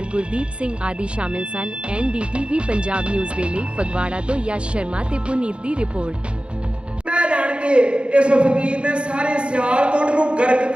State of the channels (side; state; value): left; late; 0.057 ms